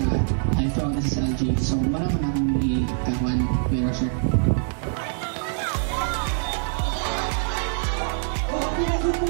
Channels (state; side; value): silent; left; digital silence